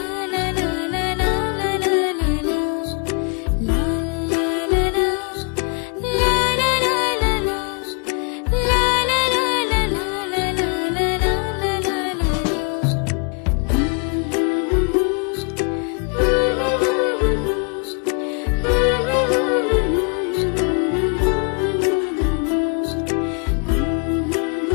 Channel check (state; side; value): quieter; right; 36.4 dB